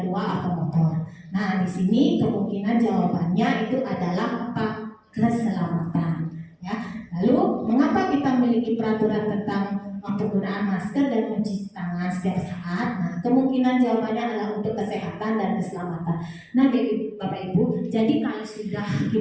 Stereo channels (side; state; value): both; identical; correlation 1.00